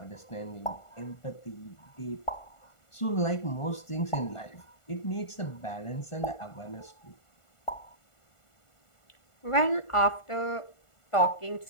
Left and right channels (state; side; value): late; right; 1.5 ms